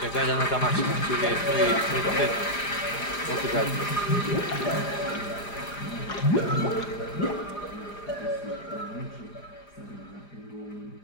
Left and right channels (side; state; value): right; late; 4.9 ms